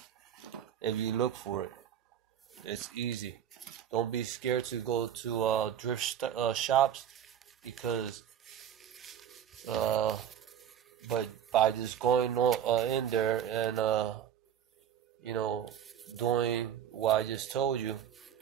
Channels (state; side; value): quieter; left; 9.5 dB